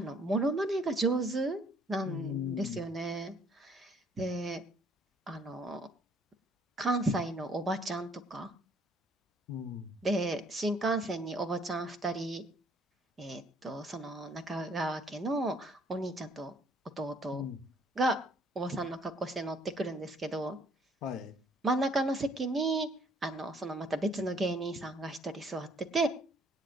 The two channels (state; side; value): normal; both; correlation 0.62